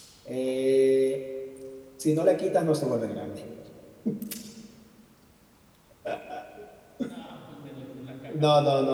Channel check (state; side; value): identical; both; correlation 1.00